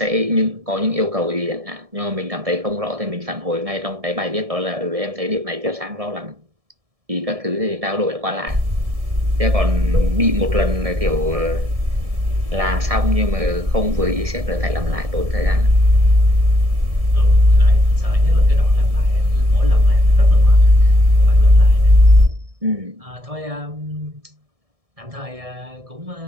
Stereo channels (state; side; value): late; left; 1.7 ms